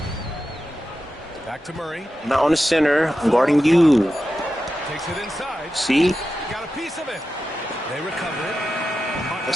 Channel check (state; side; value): normal; both; correlation 0.91